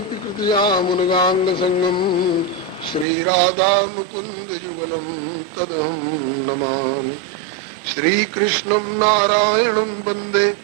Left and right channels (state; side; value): drops out; left; at 3.1 s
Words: कृतयामुनगाङ्गसङ्गं श्रीराधा मुकुन्दयुगलं तदहं नमामि। श्रीकृष्णं नारायणं वन्दे